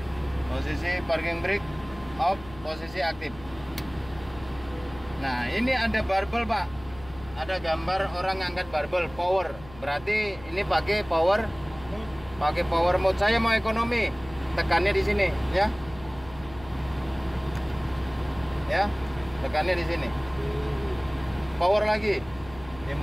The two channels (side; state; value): left; noise; hum, 18 dB below the sound